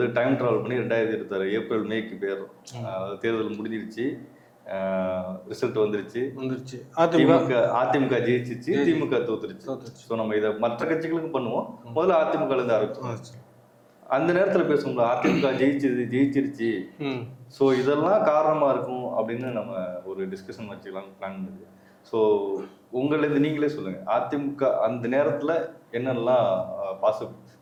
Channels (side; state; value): both; identical; correlation 1.00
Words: டைம் ட்ராவல் பண்ணி 2026 ஏப்ரல் மேக்கு போயிடுறோம். தேர்தல் முடிஞ்சிருச்சு, ரிசல்ட் வந்துருச்சு. அதிமுக ஜெயிச்சிச்சு, திமுக தோத்துருச்சு. ஸோ நம்ம இதை மற்ற கட்சிகளுக்கும் பண்ணுவோம். முதல்ல அதிமுகலேருந்து ஆரம்பிச்சோம். அந்த நேரத்தில் பேசுவோம்ல, அதிமுக ஜெயிச்சிருச்சு, ஸோ இதெல்லாம் காரணமாக இருக்கும் அப்படின்னு நம்ம ஒரு டிஸ்கஷன் வச்சுக்கலாம்னு பிளான் பண்ணுது. ஸோ உங்களிலேருந்து நீங்களே சொல்லுங்கள், அதிமுக அந்த நேரத்தில் என்னெல்லாம்